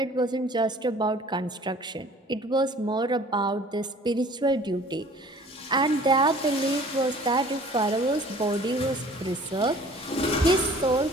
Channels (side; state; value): both; normal; correlation 0.50